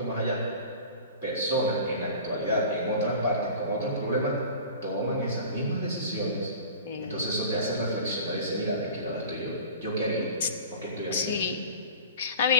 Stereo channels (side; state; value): both; inverted; correlation -0.39